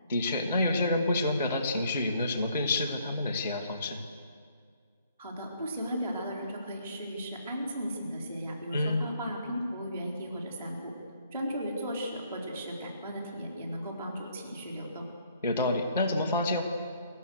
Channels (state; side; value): inverted; both; correlation -0.66